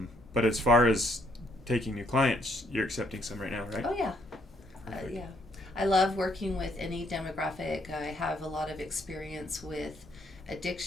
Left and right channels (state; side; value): normal; both; correlation 0.69